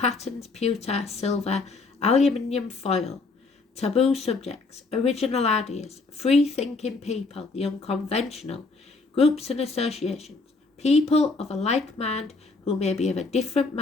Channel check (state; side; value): quieter; right; 3.8 dB